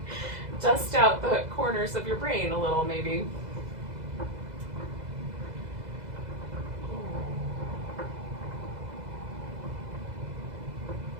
Dust out the corners of your brain a little, maybe.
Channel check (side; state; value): left; late; 2.0 ms